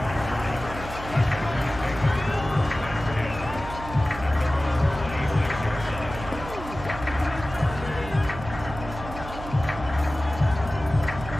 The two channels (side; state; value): right; noise; hum, 11 dB below the sound